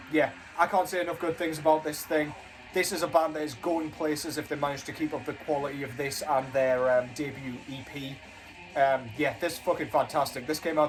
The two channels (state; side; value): identical; both; correlation 1.00